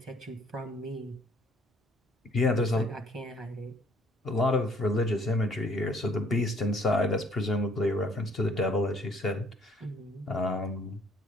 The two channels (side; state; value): both; normal; correlation 0.60